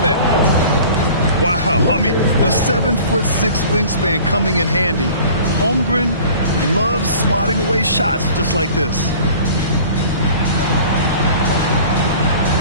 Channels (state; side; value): inverted; both; correlation -0.46